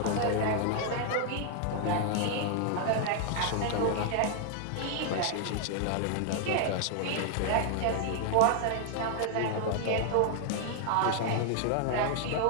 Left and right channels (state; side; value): different; both; correlation 0.00